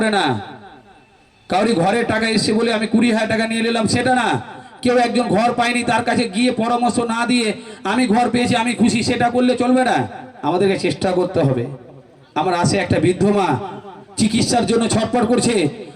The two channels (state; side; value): identical; both; correlation 1.00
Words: না, কাউরি ঘরের টাকা এসছে বলে আমি 20,000 টাকা নিয়ে নিলাম সেটা না। কেউ একজন ঘর পায়নি, তার কাছে গিয়ে পরামর্শ না দিয়ে আমি ঘর পেয়েছি, আমি খুশি, সেটা করলে চলবে না। আমাদেরকে চেষ্টা করতে হবে। আমার আসে একটা বৃদ্ধ মা চিকিৎসার জন্য ছটফট করছে,